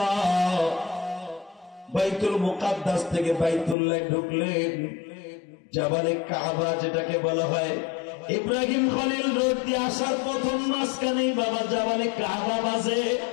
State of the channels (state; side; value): drops out; right; at 3.8 s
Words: বাইতুল মুকাদ্দাস থেকে বাইতুল্লাহ ঢুকলেন। জাবালে কাবা যেটাকে বলা হয়, ইব্রাহিম খলিল রোড দিয়ে আসার প্রথম মাঝখানেই বাবা জাবালে কাবা বাজে।